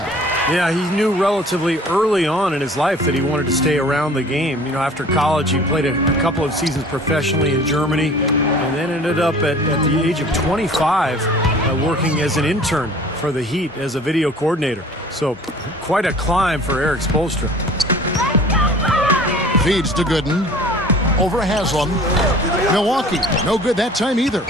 Yeah, he knew relatively early on in his life that he wanted to stay around the game. You know, after college, he played a couple of seasons professionally in Germany and then ended up at the age of 25 working as an intern for the Heat as a video coordinator. So quite a climb for Eric Spoelstra. Feeds to Gooden. Over Haslam. Milwaukee, no good that time either.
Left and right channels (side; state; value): both; normal; correlation 0.47